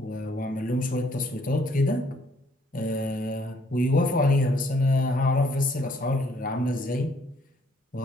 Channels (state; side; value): normal; both; correlation 0.65